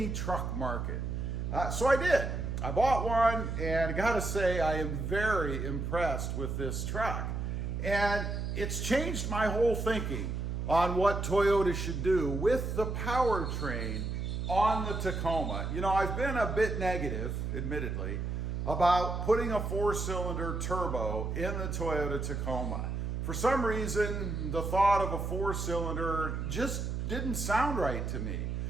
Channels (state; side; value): noise; right; hum, 3 dB below the sound